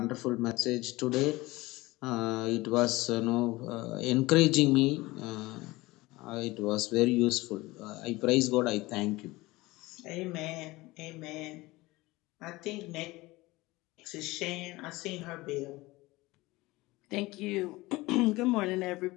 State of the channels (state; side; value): quieter; right; 20.5 dB